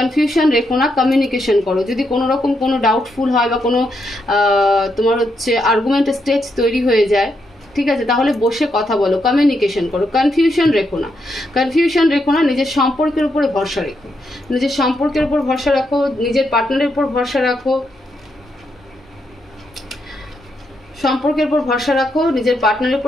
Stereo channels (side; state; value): both; normal; correlation 0.80